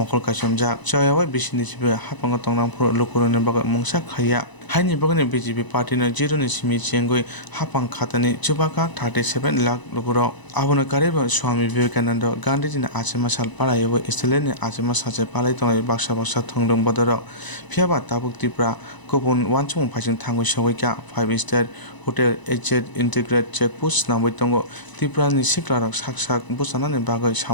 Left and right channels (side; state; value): right; late; 1.0 ms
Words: Kashamja Choyawa Bishini Hapang Tongnam Pro Lukurone Baga Mungsa Khaya Haini Bagani BJP Party na Jiro ni Simi Chengoi Hapang Khatani Chubaka 37 lakh lukuro Abona Kariba Swami Vivekananda Gandhi na Achema Sal Palayo Istelene Achema Sache Palai Tongai Baksha Baksha Thongdong Badaro Phiaba Tabuk Tipra Kopon Wanchung Phajing Thangoi Shawika 5-star Hotel HZ Integrated Checkpost Namoi Tongo Tipra ni Siklarak Saksak Busana ni Bagoi